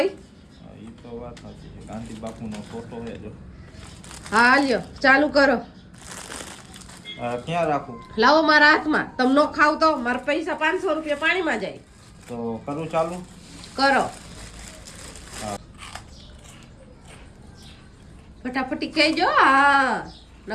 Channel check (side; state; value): both; identical; correlation 1.00